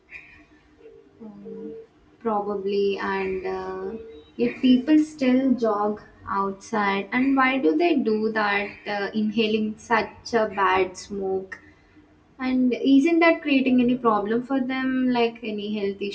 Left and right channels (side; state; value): both; identical; correlation 1.00